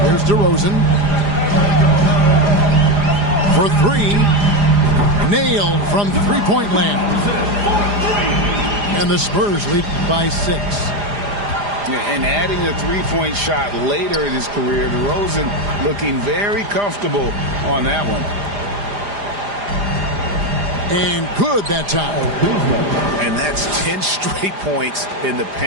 Here's DeRozan. For 3. Nailed from three-point land. And the Spurs lead by 6. And adding a three-point shot later in his career, DeRozan looking very comfortable on that one. And good that time. And that's 10 straight points in the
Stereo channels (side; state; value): left; late; 4.9 ms